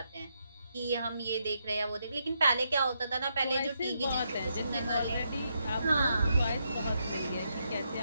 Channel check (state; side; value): inverted; both; correlation -0.80